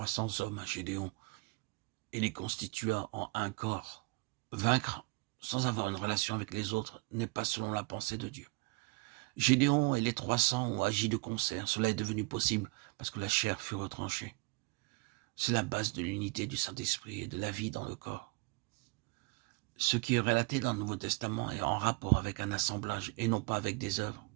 hommes à Gédéon et les constitua en un corps. Vaincre sans avoir une relation avec les autres n'est pas selon la pensée de Dieu. Gédéon et les 300 ont agi de concert. Cela est devenu possible parce que la chair fut retranchée. C'est la base de l'unité du Saint-Esprit et de la vie dans le corps. Ce qui est relaté dans le Nouveau Testament est en rapport avec un assemblage et non pas avec des œuvres.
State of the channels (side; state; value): left; quieter; 28.5 dB